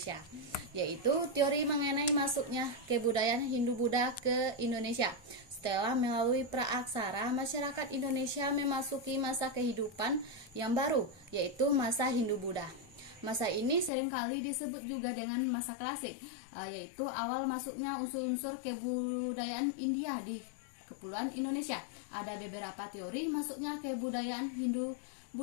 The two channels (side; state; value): right; drops out; at 13.9 s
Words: yaitu teori mengenai masuknya kebudayaan Hindu-Buddha ke Indonesia. Setelah melalui praaksara, masyarakat Indonesia memasuki masa kehidupan yang baru, yaitu masa Hindu-Buddha. Masa ini seringkali disebut juga dengan masa klasik, yaitu awal masuknya unsur-unsur kebudayaan India di Kepulauan Indonesia. Ada beberapa teori masuknya kebudayaan